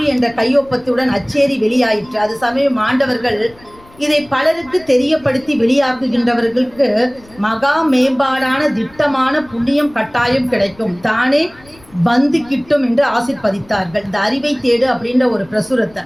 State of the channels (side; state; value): left; noise; rumble, 26 dB below the sound